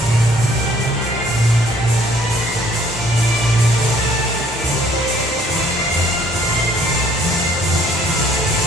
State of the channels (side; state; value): both; normal; correlation 0.61